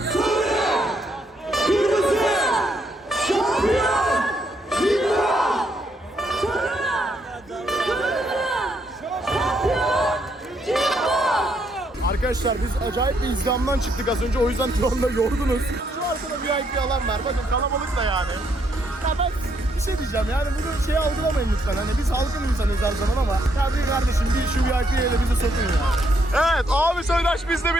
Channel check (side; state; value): both; normal; correlation 0.74